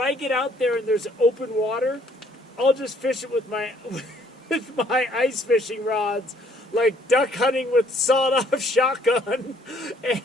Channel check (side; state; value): both; normal; correlation 0.63